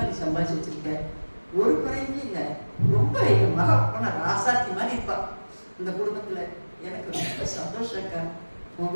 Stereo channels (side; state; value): both; inverted; correlation -1.00